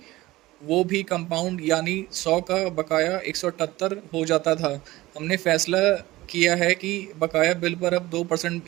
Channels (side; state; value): left; quieter; 18.1 dB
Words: वो भी कंपाउंड यानी 100 का बकाया 178 हो जाता था। हमने फैसला किया है कि बकाया बिल पर अब